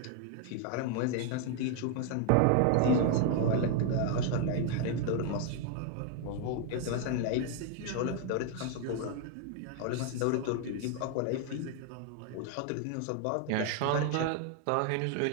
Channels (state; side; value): different; both; correlation 0.00